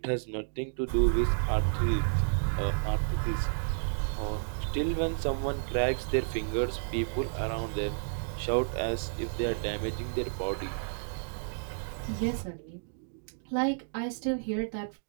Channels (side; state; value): left; silent; digital silence